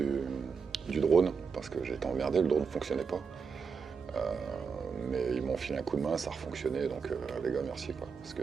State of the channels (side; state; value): left; quieter; 5.7 dB